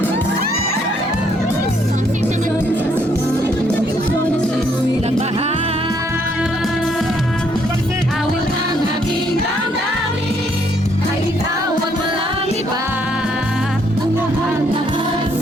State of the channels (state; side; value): normal; both; correlation 0.69